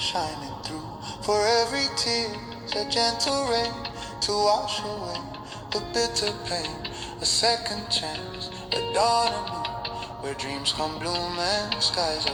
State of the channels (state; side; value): identical; both; correlation 1.00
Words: through. For every tear's a gentle rain to wash away the bitter pain. A second chance, a dawn anew, where dreams come bloom and skies